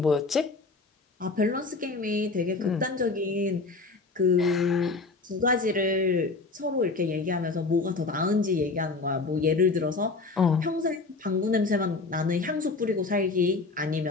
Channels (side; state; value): right; quieter; 3.8 dB